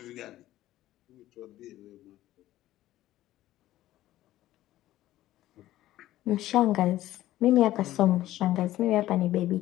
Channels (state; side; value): quieter; right; 14.7 dB